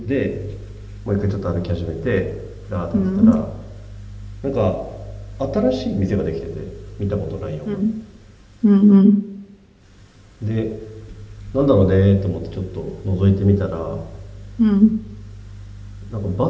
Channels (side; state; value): both; identical; correlation 1.00